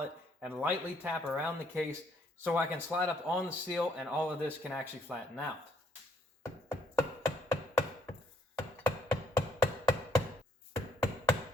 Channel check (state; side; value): normal; both; correlation 0.69